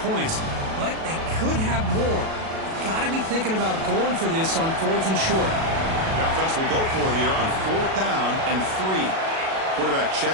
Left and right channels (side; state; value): left; late; 37 ms